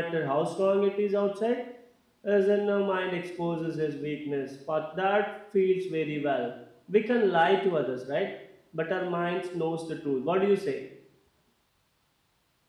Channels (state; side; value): identical; both; correlation 1.00